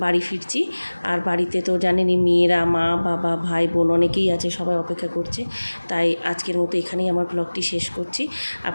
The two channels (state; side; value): inverted; both; correlation -1.00